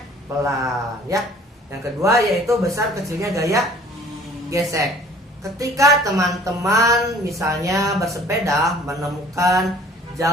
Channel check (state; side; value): normal; both; correlation 0.52